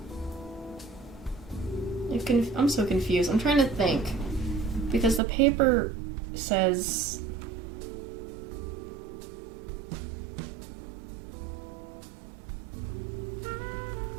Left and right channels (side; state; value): left; drops out; at 5.2 s